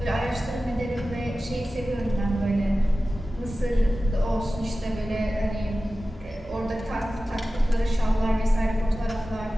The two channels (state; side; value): normal; both; correlation 0.95